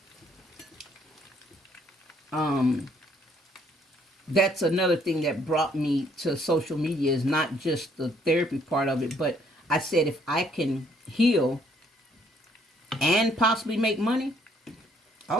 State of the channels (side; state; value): both; normal; correlation 0.66